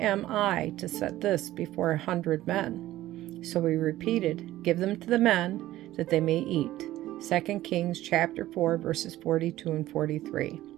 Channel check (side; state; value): left; quieter; 15.1 dB